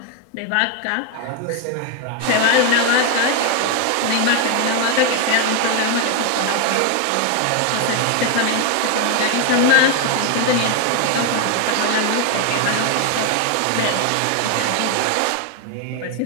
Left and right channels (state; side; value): different; both; correlation 0.01